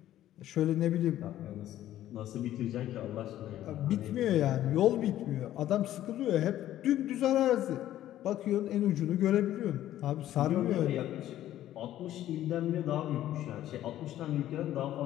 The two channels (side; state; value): right; quieter; 12.9 dB